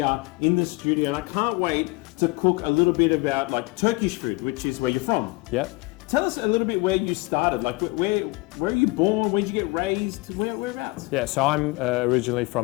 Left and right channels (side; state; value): right; quieter; 23.3 dB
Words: in the studio, and I can't wait to cook a little bit about like Turkish food, which is where you're from. Yep. Tell us a little bit where you started, like where are you born, where did you get raised, whereabouts? Yeah, so I'm originally